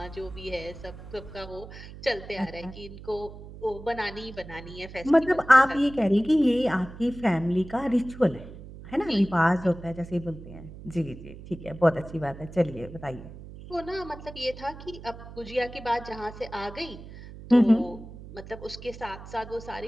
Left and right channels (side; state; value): right; noise; hum, 15 dB below the sound